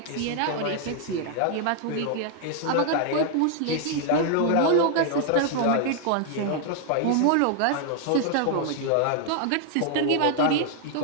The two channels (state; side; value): different; both; correlation 0.00